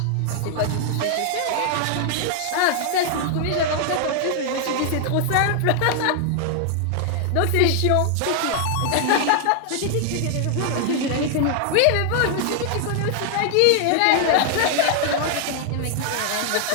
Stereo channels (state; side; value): different; both; correlation 0.00